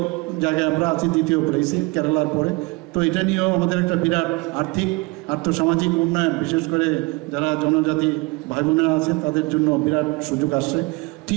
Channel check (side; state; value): left; quieter; 25.6 dB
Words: জায়গায় আমরা আছি, দ্বিতীয় প্লেসে কেরালার পরে। তো এটা নিয়েও আমাদের একটা বিরাট আর্থসামাজিক উন্নয়ন, বিশেষ করে যারা জনজাতি ভাই বোনেরা আছে তাদের জন্য বিরাট সুযোগ আসছে। টি